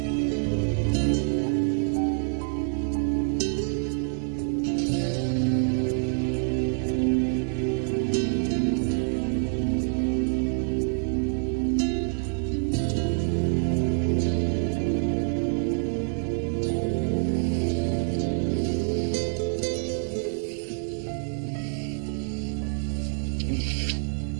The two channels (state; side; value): silent; left; digital silence